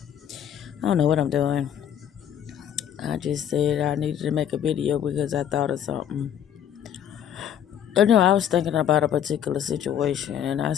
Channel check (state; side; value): quieter; right; 9.5 dB